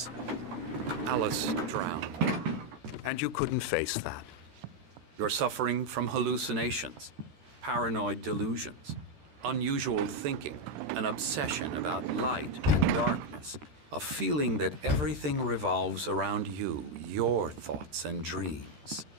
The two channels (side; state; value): left; late; 13 ms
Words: Alice drowned, and you couldn't face that. You're suffering from hallucinations, paranoid delusions, unusual thinking, an obsession about light and darkness, a feeling that everything revolves around you, your thoughts and dreams.